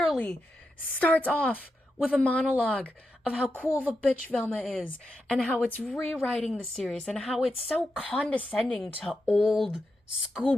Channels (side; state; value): both; normal; correlation 0.87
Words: starts off with a monologue of how cool of a bitch Velma is, and how it's rewriting the series, and how it's so condescending to old